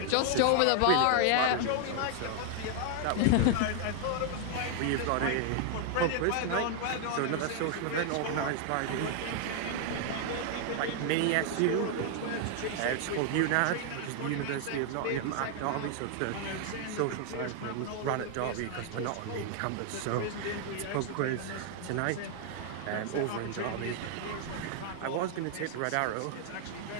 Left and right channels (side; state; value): both; different; correlation 0.00